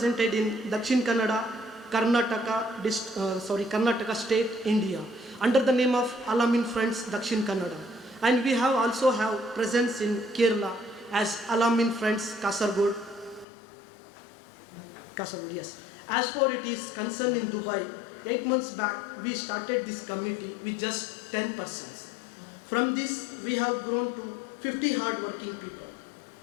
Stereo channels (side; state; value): right; drops out; at 13.5 s